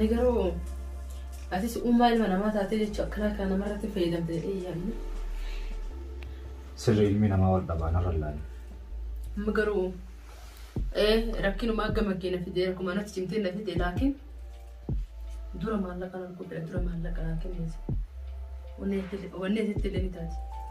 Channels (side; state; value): both; identical; correlation 1.00